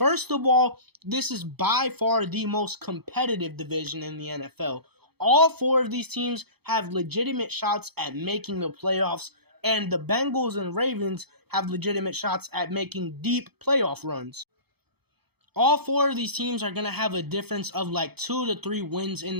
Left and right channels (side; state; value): left; late; 0.97 ms